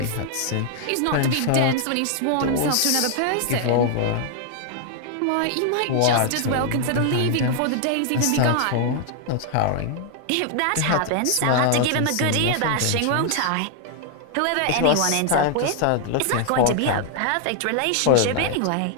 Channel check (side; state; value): both; different; correlation 0.00